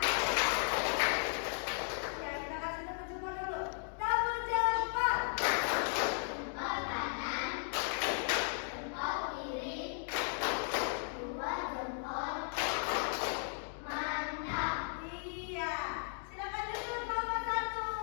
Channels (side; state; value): right; silent; 54 dB below the other